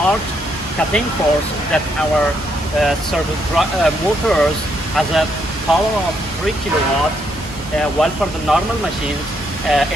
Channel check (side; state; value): both; normal; correlation 0.75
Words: cutting force that our servo motors has a power of 3 kilowatt, while for the normal machines